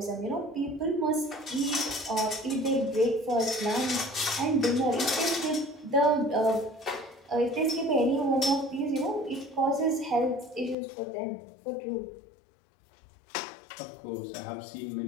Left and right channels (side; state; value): right; drops out; at 10.8 s